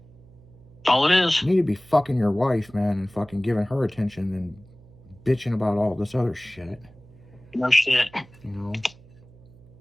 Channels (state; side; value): noise; right; hum, 24 dB below the sound